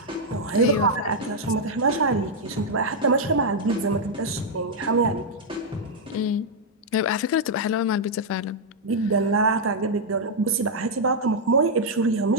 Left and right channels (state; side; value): normal; both; correlation -0.03